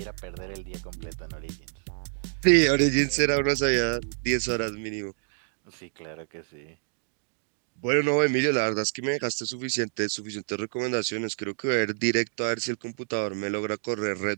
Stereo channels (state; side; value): silent; left; digital silence